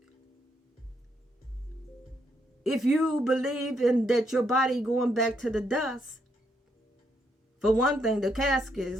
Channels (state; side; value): normal; both; correlation 0.76